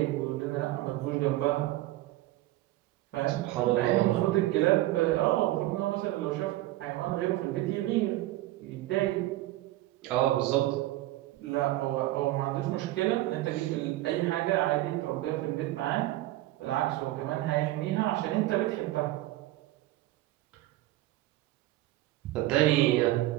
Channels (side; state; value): left; quieter; 16.6 dB